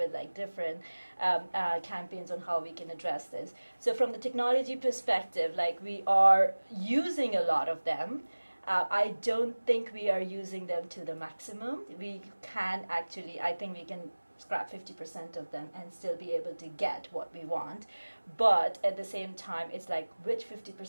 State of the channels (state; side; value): inverted; both; correlation -1.00